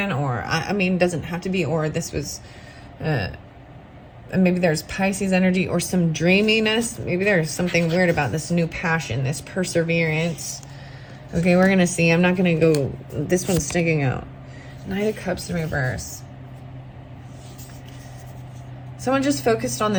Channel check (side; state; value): both; identical; correlation 1.00